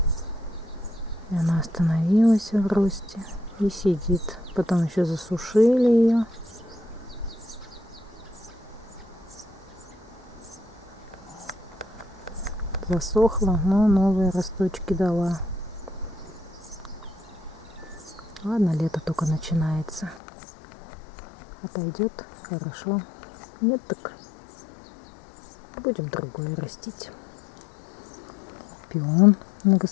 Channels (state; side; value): drops out; right; at 20.2 s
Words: И она остановилась в росте и сидит. Потом еще засушили ее. Засохла, но новые росточки дала. Ладно, лето только начинается. Отойдет, хорошо. Нет, так будем другое растить. Пион